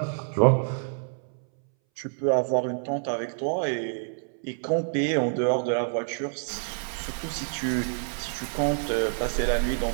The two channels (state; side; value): silent; left; 60 dB below the other